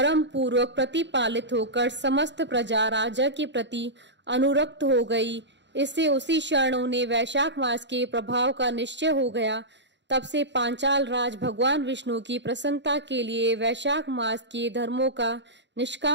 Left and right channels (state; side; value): late; left; 0.52 ms